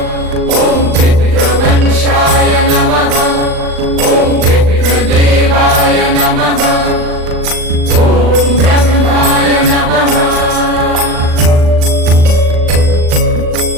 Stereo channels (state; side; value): late; left; 39 ms